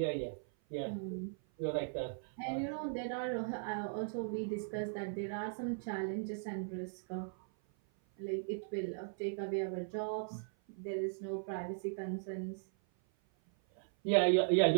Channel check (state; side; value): silent; left; 52 dB below the other